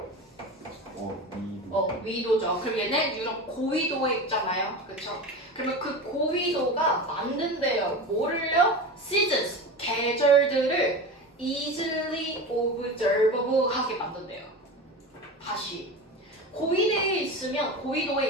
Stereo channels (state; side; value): normal; both; correlation 0.28